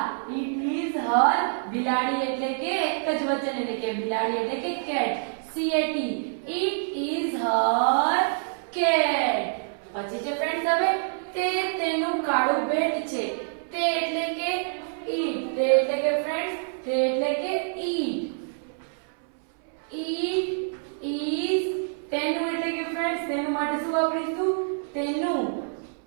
It is her. બિલાડી એટલે કે એક જ વચન એટલે કે બિલાડી એટલે કે cat. C A T. It is Har cat. પછી છે ફ્રેન્ડ્સ હવે તે તેનું કાળું બેટ છે. તે એટલે કે ઈટ. તે એટલે કે ફ્રેન્ડ્સ તે એટલે કે ઈટ. ઈટ ઇઝ તેનું એટલે કે ફ્રેન્ડ્સ તેનું માટે શું વાપરીશું? તેનું.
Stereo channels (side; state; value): left; silent; 60 dB below the other